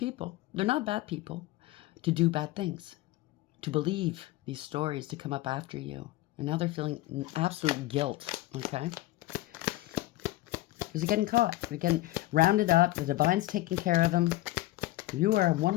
They're not bad people. To do bad things. To believe these stories, to come up after you. And now they're feeling absolute guilt. Okay? Because they're getting caught. They're getting rounded up. The divine's taking care of them. You are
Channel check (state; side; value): quieter; right; 17.1 dB